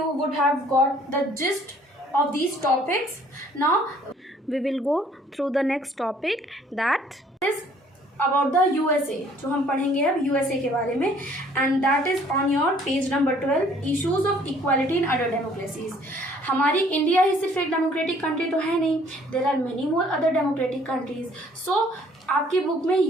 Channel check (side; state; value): both; normal; correlation 0.59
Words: would have got the gist of these topics. Now we will go through the next topic, that is about the USA. जो हम पढ़ेंगे अब USA के बारे में, and that is on your page number 12, issues of equality in other democracies. हमारी India ही सिर्फ एक डेमोक्रेटिक कंट्री तो है नहीं, there are many more other democratic countries. So आपकी बुक में